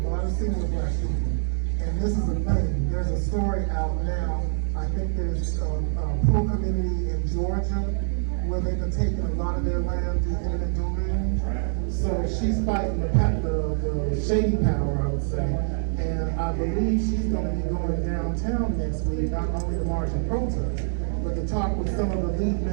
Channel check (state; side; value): silent; left; digital silence